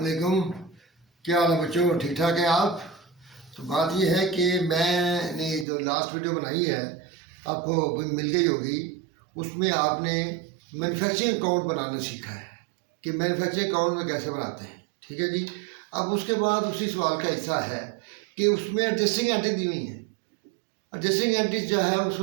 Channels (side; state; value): left; drops out; at 5.7 s